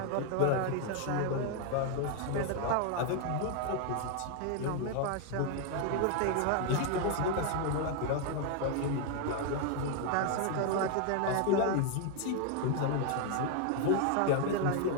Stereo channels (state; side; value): different; both; correlation 0.01